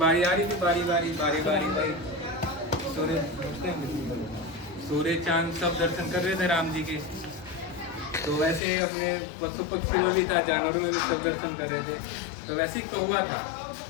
आ रही थी, बारी बारी बारी बारी बारी सूर्य चांद सब दर्शन कर रहे थे राम जी के। तो वैसे ही अपने पशु पक्षी में भी था, जानवरों में भी सब दर्शन कर रहे थे। तो वैसे ही कौवा था।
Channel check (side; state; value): right; drops out; at 8.6 s